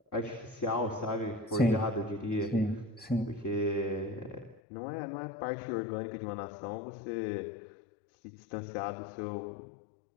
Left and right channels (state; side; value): drops out; right; at 4.6 s